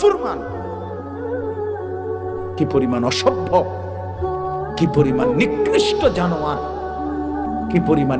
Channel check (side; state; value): both; identical; correlation 1.00